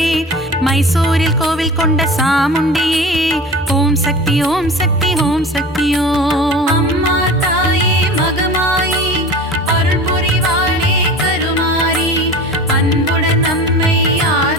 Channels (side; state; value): both; normal; correlation 0.36